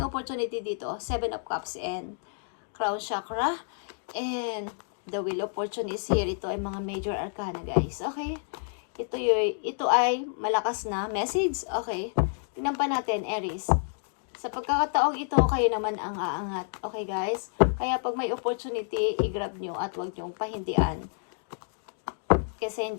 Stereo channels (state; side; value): silent; right; digital silence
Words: opportunity dito. 7 of Cups and Crown Chakra. And the will opportunity is here. Ito ay mga major arcana, guys. Okay? Ito ay malakas na message. Okay? Tingnan pa natin, Aries. Sa pagkakataong ito, kayo naman ang aangat. Okay, guys? Kaya pag may opportunity, i-grab nyo at huwag nyong pahindian. Kasi